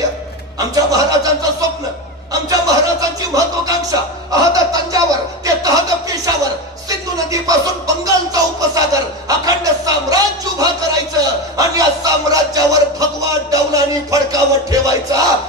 आमच्या महाराजांचं स्वप्न, आमच्या महाराजांची महत्वाकांक्षा अहद तंजावर ते तहद पेशावर, सिंधू नदीपासून बंगालचा उपसागर अखंड साम्राज्य उभा करायचं आणि या साम्राज्यावर भगवा डौलानी फडकावत ठेवायचा.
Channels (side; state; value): both; normal; correlation 0.19